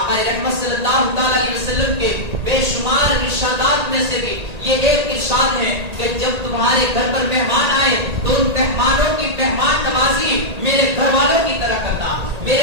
رحمت صلی اللہ تعالی علیہ وسلم کے بے شمار ارشادات میں سے بھی یہ ایک ارشاد ہے کہ جب تمہارے گھر پر مہمان آئے تو ان مہمانوں کی مہمان نوازی میرے گھر والوں کی طرح کرنا۔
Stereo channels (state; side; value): late; left; 1.8 ms